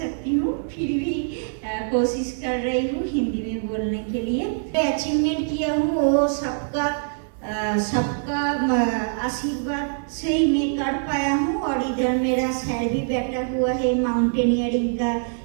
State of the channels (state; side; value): silent; left; 58 dB below the other